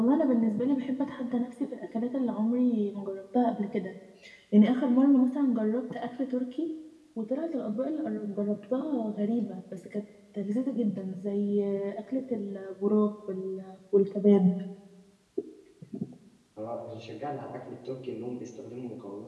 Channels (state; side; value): identical; both; correlation 1.00